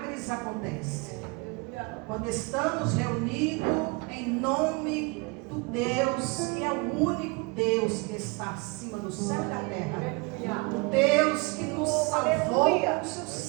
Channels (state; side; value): quieter; left; 27.8 dB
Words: acontecem. Quando estamos reunidos em nome do Deus, que é o único Deus que está acima do céu e da terra, o Deus que nos salvou com o seu